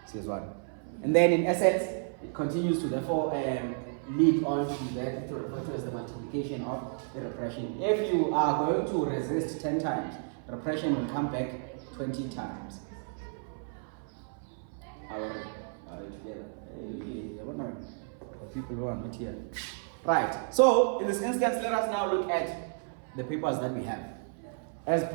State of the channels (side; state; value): left; silent; 56 dB below the other